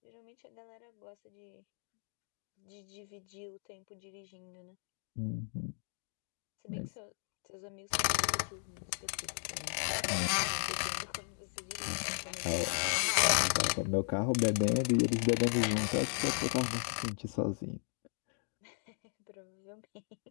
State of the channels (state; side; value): silent; right; 54 dB below the other